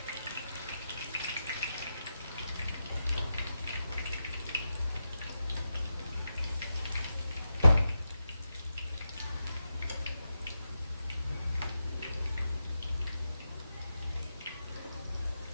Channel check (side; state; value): both; inverted; correlation -0.88